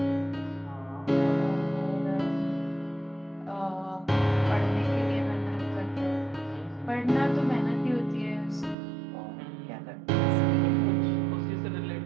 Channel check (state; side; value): drops out; left; at 8.8 s